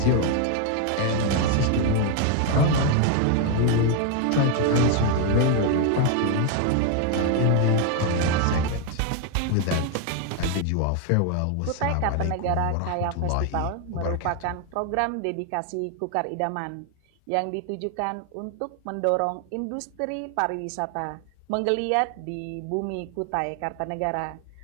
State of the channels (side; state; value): both; different; correlation 0.01